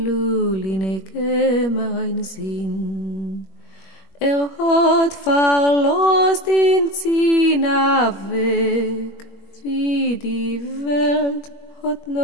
mein Sinn. Hat verlost in Zina weg, wie wie die Welt hat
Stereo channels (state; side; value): late; right; 21 ms